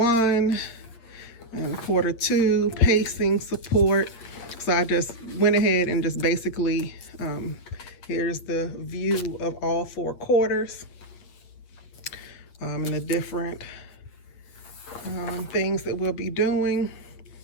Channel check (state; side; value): late; right; 8.8 ms